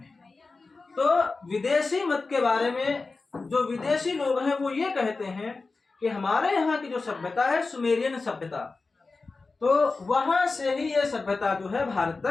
तो विदेशी मत के बारे में जो विदेशी लोग हैं वो ये कहते हैं कि हमारे यहाँ की जो सभ्यता है सुमेरियन सभ्यता, तो वहां से ही ये सभ्यता जो है भारत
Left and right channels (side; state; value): right; quieter; 3.9 dB